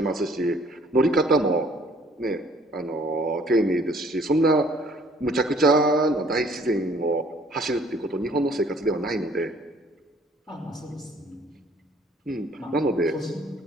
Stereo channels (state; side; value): normal; both; correlation 0.58